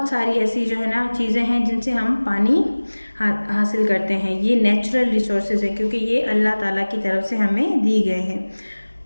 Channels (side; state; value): both; inverted; correlation -1.00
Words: सारी ऐसी जो है ना चीज़ें हैं जिनसे हम पानी हासिल करते हैं। ये नेचुरल रिसोर्सेज हैं क्योंकि ये अल्लाह ताला की तरफ से हमें दी गए हैं।